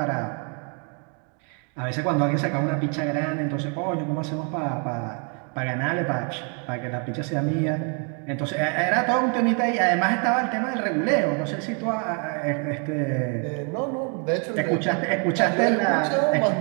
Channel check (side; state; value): left; quieter; 38.7 dB